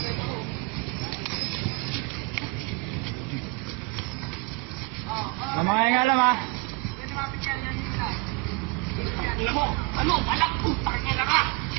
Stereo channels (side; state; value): left; quieter; 25.0 dB